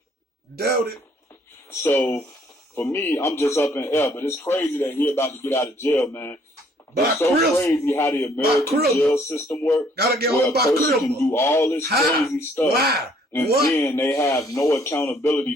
Doubt it. So, for me, I'm just up in air. But it's crazy that he about to get out of jail, man. It's so crazy how the American jail system works. Gotta get where on a by person can Cribble. do all this crazy stuff. Why? And What? then they have no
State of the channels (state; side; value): normal; both; correlation 0.63